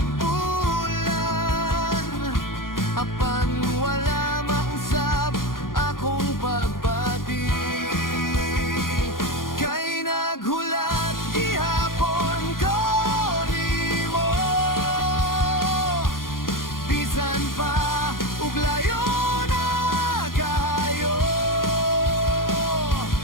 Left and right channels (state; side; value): late; right; 0.91 ms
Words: bulan, apan wala mausab akong pagbati. Kay naghulat gihapon ko nimo, bisan pa ug layo na kayo.